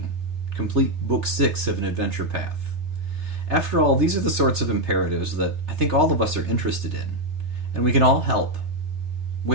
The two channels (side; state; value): left; late; 3.3 ms